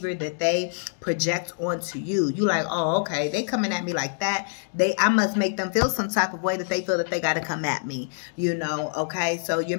that they project onto you. You like, oh, okay, they coming at me like that. I must make them feel some type of way that they feel that they got to come at me, you know, okay? So you're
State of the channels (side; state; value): right; silent; digital silence